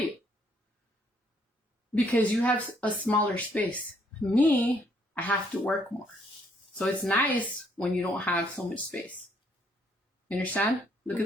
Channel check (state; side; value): normal; both; correlation 0.68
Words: Because you have a smaller space. Me, I have to work more. So it's nice when you don't have so much space. You understand? Look at